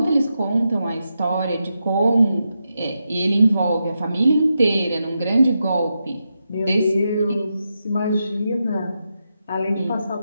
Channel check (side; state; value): both; inverted; correlation -0.87